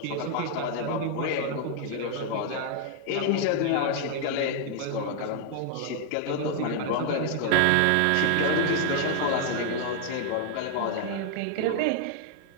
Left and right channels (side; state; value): both; different; correlation 0.00